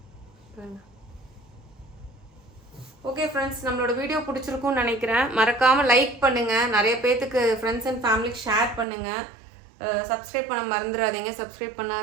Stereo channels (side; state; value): left; drops out; at 8.8 s